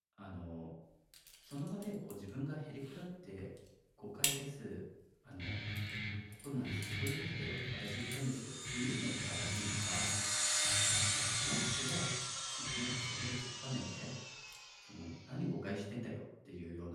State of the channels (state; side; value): identical; both; correlation 1.00